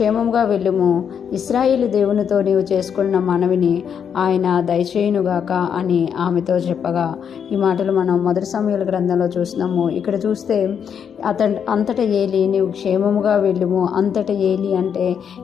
వెళ్ళుము, ఇశ్రాయేలు దేవునితో నీవు చేసుకున్న మనవిని ఆయన దయచేయునుగాక అని ఆమెతో చెప్పగా, ఈ మాటలు మనం మొదటి సమూయేలు గ్రంథంలో చూస్తున్నాము. ఇక్కడ చూస్తే అంతటా ఏలి, నీవు క్షేమముగా వెళ్ళుము. అంతటా ఏలి అంటే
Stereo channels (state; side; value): quieter; right; 7.7 dB